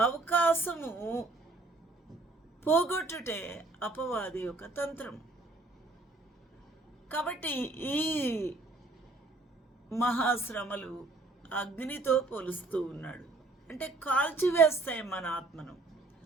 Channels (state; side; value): quieter; left; 3.1 dB